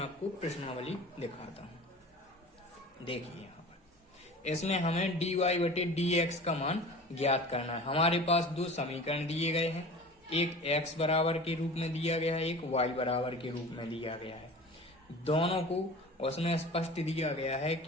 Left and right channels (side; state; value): both; normal; correlation 0.39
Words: प्रश्नावली दिखाता हूँ। देखिए, यहाँ पर इसमें हमें dy बटे dx का मान ज्ञात करना है। हमारे पास दो समीकरण दिए गए हैं, एक x बराबर के रूप में दिया गया है, एक y बराबर के रूप में दिया गया है। दोनों को उसमें स्पष्ट दिया गया है